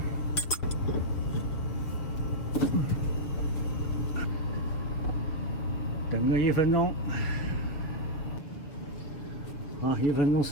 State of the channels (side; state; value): right; late; 6.8 ms